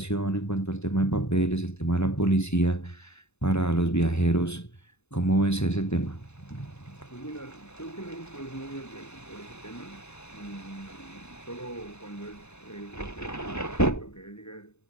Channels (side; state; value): right; late; 0.81 ms